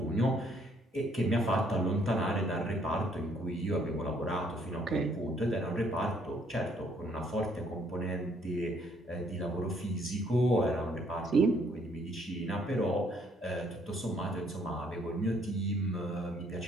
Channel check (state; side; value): normal; both; correlation 0.66